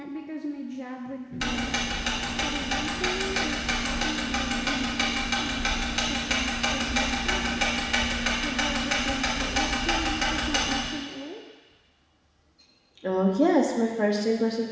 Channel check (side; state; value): both; identical; correlation 1.00